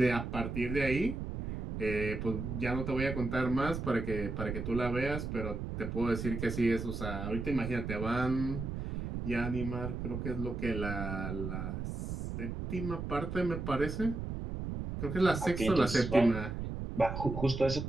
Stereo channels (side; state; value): right; noise; rumble, 5 dB below the sound